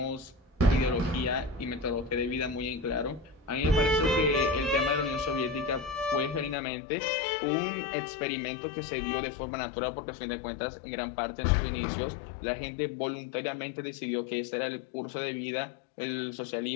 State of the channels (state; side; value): drops out; right; at 6.6 s